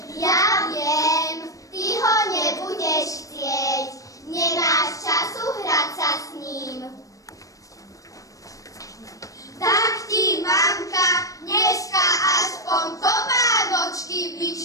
Ja viem, ty ho nebudeš chcieť, nemáš času hrať sa s ním. Tak ti, mamka, dneska aspoň topánočky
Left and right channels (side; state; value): right; late; 0.16 ms